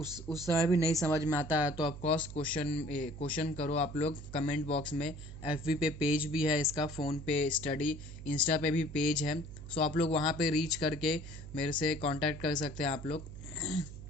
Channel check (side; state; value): right; noise; hum, 13 dB below the sound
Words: समय भी नहीं समझ में आता है तो ऑफकोर्स क्वेश्चन करो आप लोग कमेंट बॉक्स में। एफबी पे पेज भी है इसका, फ़ोन पे स्टडी, इंस्टा पे भी पेज है। सो आप लोग वहाँ पे रीच करके मेरे से कांटेक्ट कर सकते हैं आप लोग।